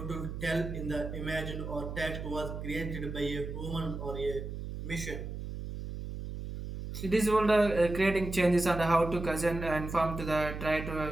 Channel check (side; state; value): right; noise; hum, 7 dB below the sound